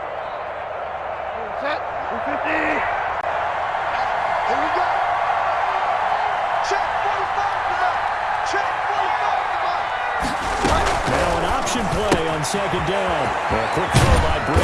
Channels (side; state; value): both; identical; correlation 1.00